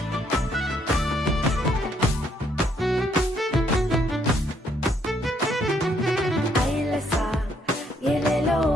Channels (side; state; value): both; normal; correlation 0.70